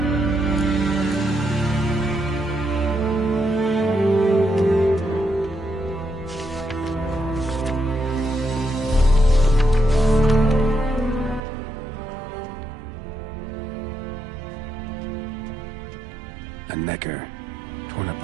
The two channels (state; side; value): drops out; left; at 11.4 s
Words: A Necker. Torn